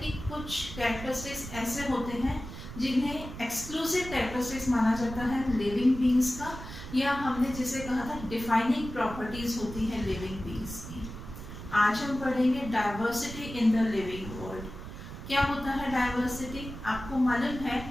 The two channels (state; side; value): noise; right; rumble, 11 dB below the sound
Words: कुछ कैरेक्टरिस्टिक्स ऐसे होते हैं जिन्हें एक्सक्लूसिव कैरेक्टरिस्टिक्स माना जाता है लिविंग बींग्स का, या हमने जिसे कहा था डिफाइनिंग प्रॉपर्टीज होती हैं लिविंग बींग्स की। आज हम पढ़ेंगे diversity in the living world. क्या होता है डाइवर्सिटी? आपको मालूम